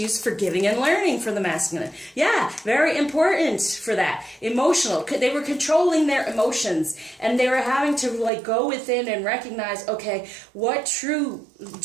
forgiving and learning for the masculine. Yeah, very important for that. Emotional. They were controlling their emotions, and they were having to like go within and recognize, okay, what true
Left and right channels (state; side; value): drops out; left; at 8.3 s